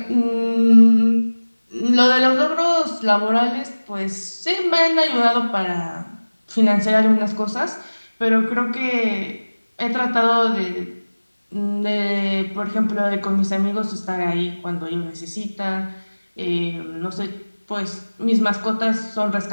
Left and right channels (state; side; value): inverted; both; correlation -1.00